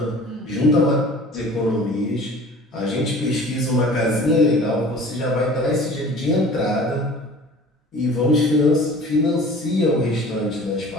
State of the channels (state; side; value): normal; both; correlation 0.44